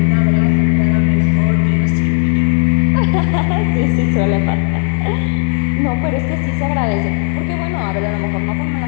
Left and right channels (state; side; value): silent; right; 56 dB below the other